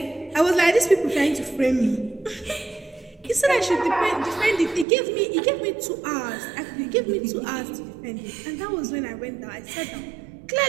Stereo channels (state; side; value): drops out; left; at 4.9 s